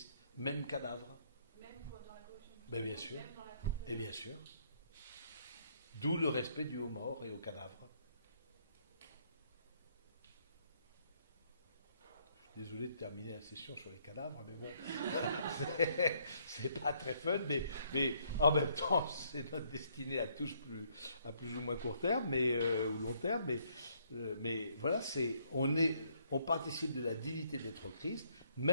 même cadavre. Même dans la corruption du Ben, bien sûr. même dans la Et bien sûr. D'où le respect dû aux morts et aux cadavres. Je suis désolé de terminer la session sur les cadavres, mais bon, c'est pas très fun, mais en même temps, c'est notre destinée à tous à plus ou moins court terme, ou long terme, mais voilà, on participe de la dignité d'être Christ,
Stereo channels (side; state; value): both; inverted; correlation -0.68